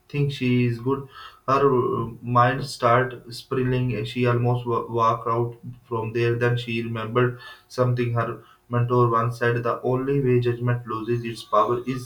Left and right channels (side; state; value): both; identical; correlation 1.00